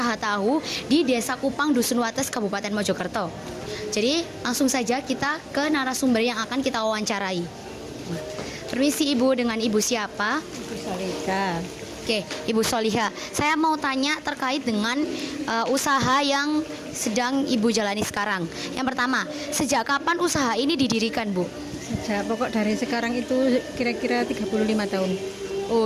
tahu di Desa Kupang, Dusun Wates, Kabupaten Mojokerto. Jadi langsung saja kita ke narasumber yang akan kita wawancarai. Permisi Ibu, dengan Ibu siapa? Ibu Soliha. Oke, Ibu Soliha. Saya mau tanya terkait dengan usaha yang sedang Ibu jalani sekarang. Yang pertama, sejak kapan usaha ini didirikan, Bu? Sejak pokok dari sekarang itu kira-kira 35 tahun.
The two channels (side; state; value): both; identical; correlation 1.00